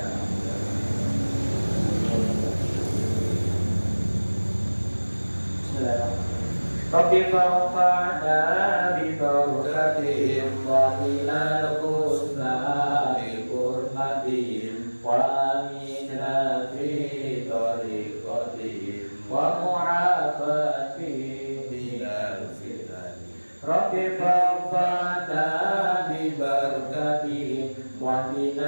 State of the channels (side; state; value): both; inverted; correlation -1.00